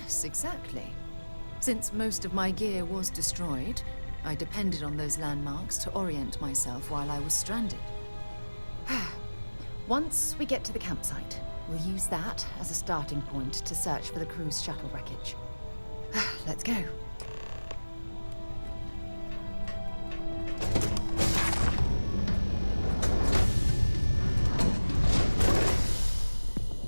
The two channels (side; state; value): both; inverted; correlation -1.00